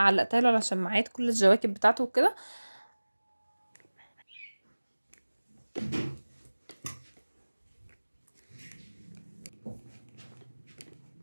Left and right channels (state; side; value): inverted; both; correlation -1.00